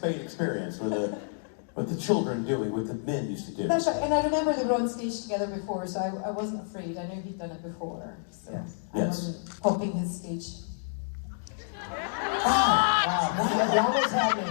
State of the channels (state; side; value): silent; right; digital silence